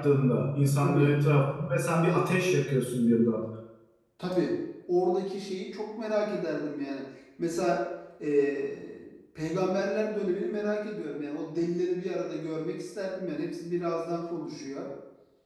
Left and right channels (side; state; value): both; identical; correlation 1.00